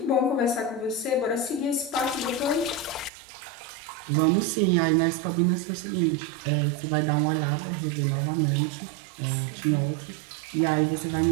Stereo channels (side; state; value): left; drops out; at 3.1 s